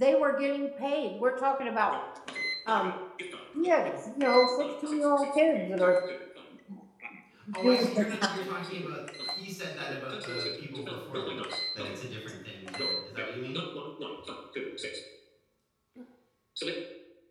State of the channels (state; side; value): identical; both; correlation 1.00